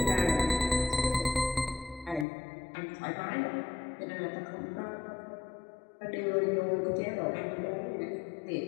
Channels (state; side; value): drops out; right; at 2.2 s